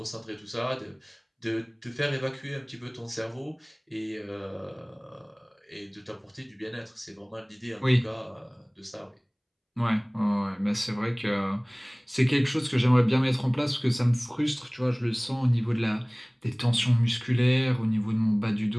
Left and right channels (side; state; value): both; identical; correlation 1.00